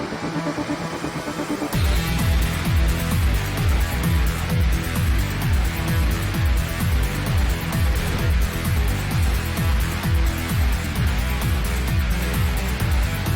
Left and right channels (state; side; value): identical; both; correlation 1.00